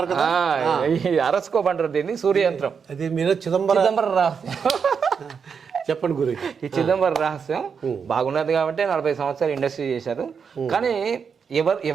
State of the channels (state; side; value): quieter; left; 6.3 dB